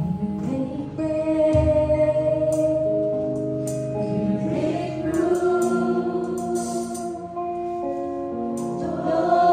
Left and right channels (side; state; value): both; identical; correlation 1.00